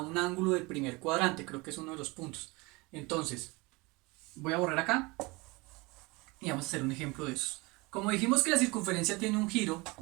del primer cuadrante. Creo que es uno de los puntos. Entonces, voy a borrar acá y vamos a hacer un ejemplo de eso. Como dijimos que la circunferencia tiene un giro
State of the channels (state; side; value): quieter; left; 25.0 dB